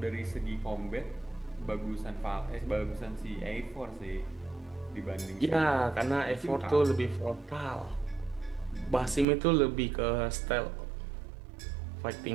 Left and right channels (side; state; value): left; drops out; at 9.2 s